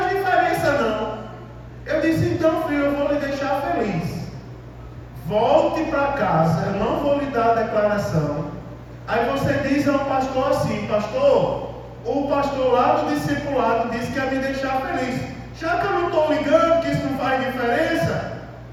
diferença não. Eu disse, então filho, eu vou lhe deixar feliz. Volte para casa, eu não vou lhe dar a declaração. Aí você diz ao pastor assim, pastor, o pastor lá do discipulado disse que ia me deixar feliz. Já que eu não estou ligando que isso não faz diferença,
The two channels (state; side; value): identical; both; correlation 1.00